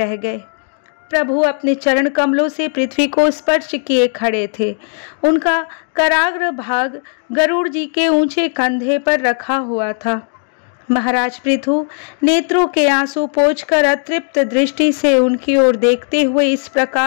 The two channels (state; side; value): silent; right; 58 dB below the other